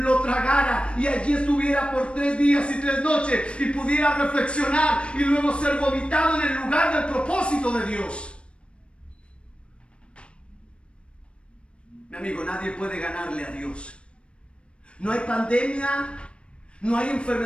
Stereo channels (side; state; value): right; late; 0.058 ms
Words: tragara y allí estuviera por 3 días y 3 noches y pudiera reflexionar y luego ser vomitado en el lugar del propósito de Dios. Mi amigo, nadie puede ganarle a Dios. No hay pandemia, no hay